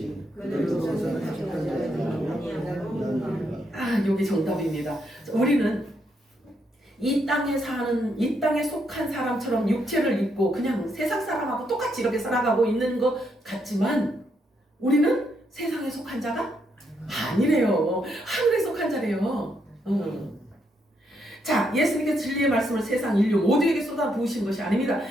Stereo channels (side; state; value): both; normal; correlation 0.77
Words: 그들도 세상에 속하지 않는 여기 정답입니다. 우리는 이 땅에 사는, 이 땅에 속한 사람처럼 육체를 입고 그냥 세상 사람하고 똑같이 이렇게 살아가고 있는 것 같지만 우리는 세상에 속한 자가 아니래요. 하늘에 속한 자래요. 자, 예수님께서 진리의 말씀을 세상 인류 모두에게 쏟아부으신 것이 아닙니다.